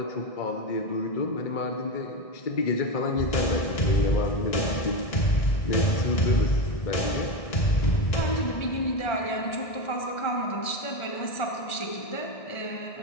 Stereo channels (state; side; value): late; right; 1.6 ms